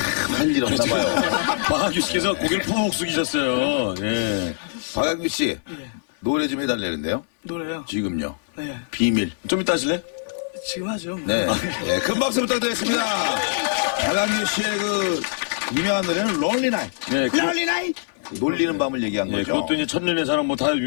할 일 없나 봐요. 박학규 씨께서 고개를 푹 숙이셨어요. 예. 박학규 씨 노래 좀 해달라는데요. 노래요? 지금요. 네. 비밀. 좀 이따 하실래? 지금 하죠. 뭐. 네. 큰 박수 부탁드리겠습니다. 박학규 씨의 그 유명한 노래는 롤리 나이. 네. 롤리 나이. 놀리는 밤을 얘기한 예, 거죠. 그것도 이제 천년의 사랑 뭐 다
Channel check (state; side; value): silent; right; digital silence